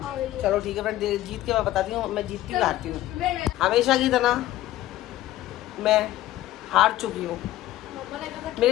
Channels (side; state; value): right; quieter; 14.8 dB